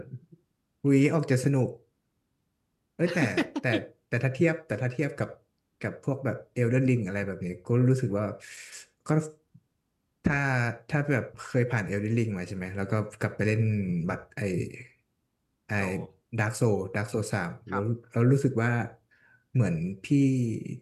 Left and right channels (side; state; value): both; identical; correlation 1.00